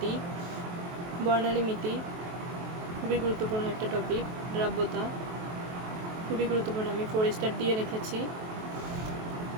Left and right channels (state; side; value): late; left; 23 ms